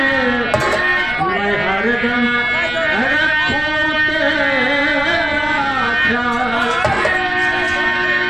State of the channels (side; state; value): right; noise; rumble, 14 dB below the sound